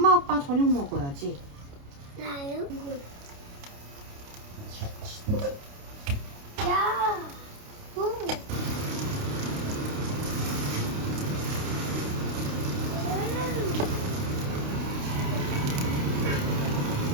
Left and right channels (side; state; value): left; late; 29 ms